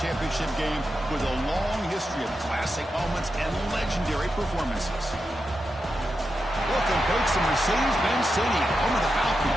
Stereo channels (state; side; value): normal; both; correlation 0.88